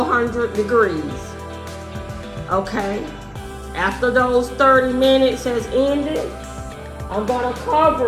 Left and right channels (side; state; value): both; identical; correlation 1.00